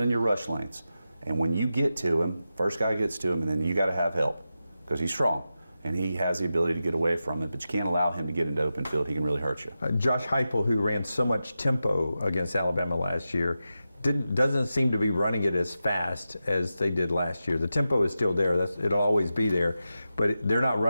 your rush lanes. And when you get to him, first guy gets to him, and then you got to have help because he's strong. And he has the ability to get away from it, but you can't allow him to get into open field. He can really hurt you. Josh Heupel, who ran so much tempo against Alabama last year, doesn't seem to be running it as fast as they did last year. The tempo is still there. It'll always be there. But they're not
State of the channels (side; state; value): both; inverted; correlation -0.91